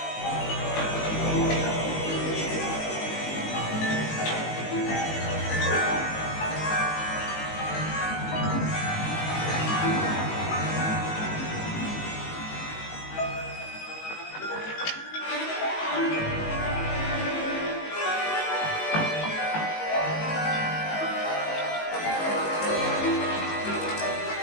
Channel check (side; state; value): right; late; 19 ms